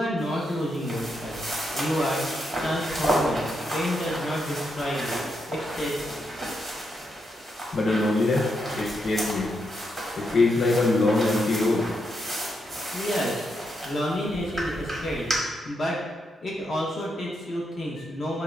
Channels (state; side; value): normal; both; correlation 0.82